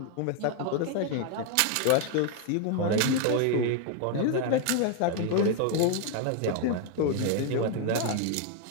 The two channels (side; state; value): both; different; correlation 0.00